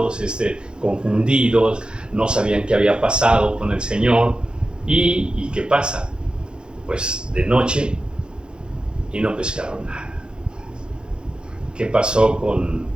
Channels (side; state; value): left; late; 0.049 ms